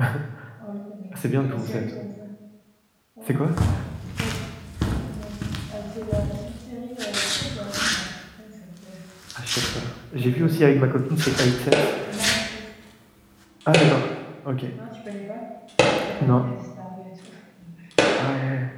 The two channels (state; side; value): identical; both; correlation 1.00